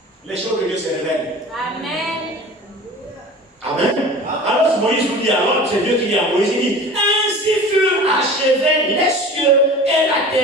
Les choses de Dieu se révèlent. Amen. Amen. Alors Moïse vous dit, alors c'est Dieu qui dit à Moïse, il dit, ainsi furent achevés les cieux et la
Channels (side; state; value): both; normal; correlation 0.38